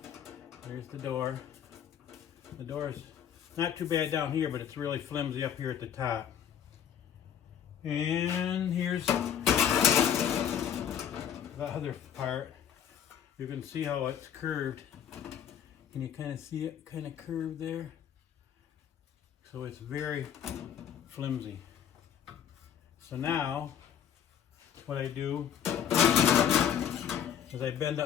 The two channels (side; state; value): right; quieter; 9.0 dB